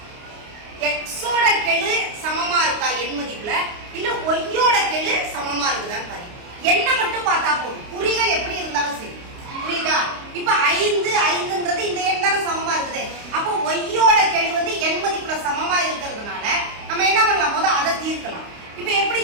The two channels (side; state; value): left; late; 29 ms